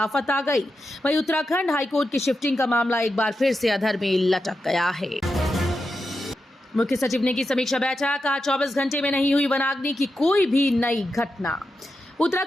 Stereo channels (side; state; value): both; normal; correlation 0.88